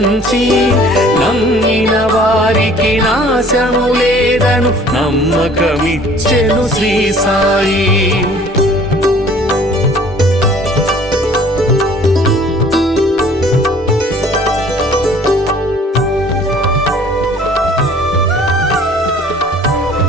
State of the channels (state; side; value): normal; both; correlation 0.52